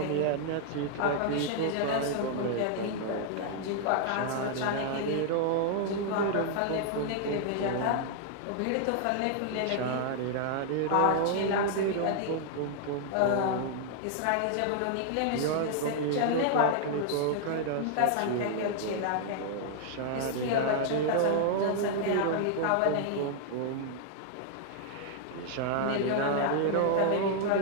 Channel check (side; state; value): both; different; correlation 0.00